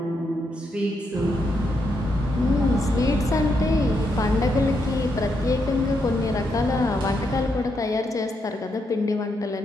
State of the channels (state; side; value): normal; both; correlation 0.80